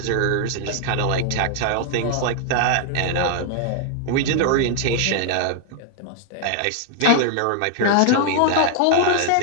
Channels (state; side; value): different; both; correlation 0.00